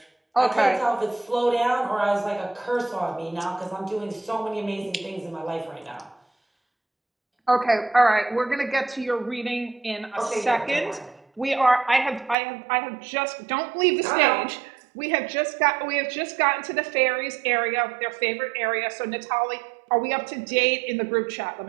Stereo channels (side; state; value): left; drops out; at 12.4 s